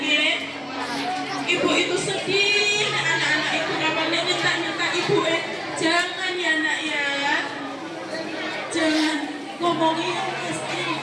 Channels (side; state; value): both; identical; correlation 1.00